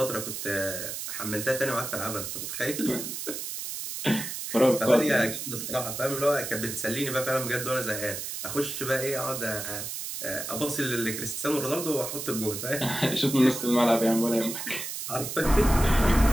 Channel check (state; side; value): noise; right; hiss, 6 dB below the sound